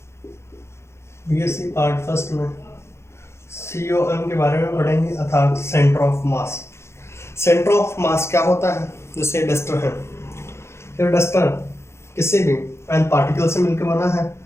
में सीओएम के बारे में पढ़ेंगे, अर्थात centre of mass. Centre of mass क्या होता है? जैसे डस्टर है, ये डस्टर किसी भी एन पार्टिकल से मिलकर बना है,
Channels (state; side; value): late; right; 0.13 ms